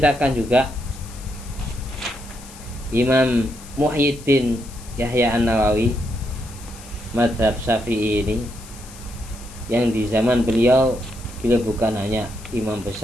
juga Imam Muhyiddin Yahya An-Nawawi mazhab Syafi'i ini, yang di zaman beliau bukan hanya imam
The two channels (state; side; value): noise; left; hiss, 19 dB below the sound